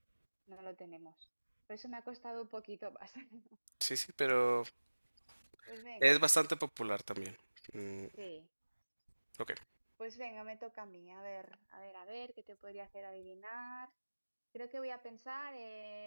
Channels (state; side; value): inverted; both; correlation -1.00